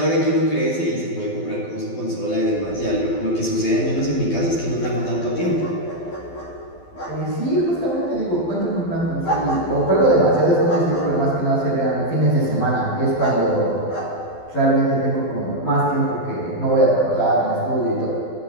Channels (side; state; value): right; late; 12 ms